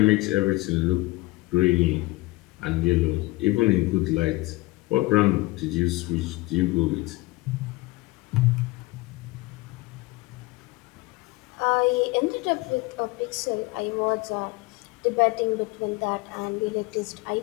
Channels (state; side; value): quieter; right; 21.6 dB